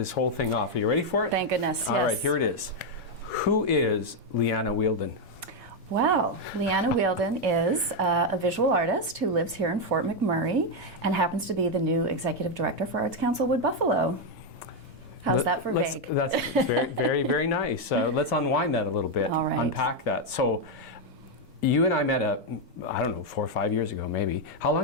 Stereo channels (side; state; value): both; normal; correlation 0.03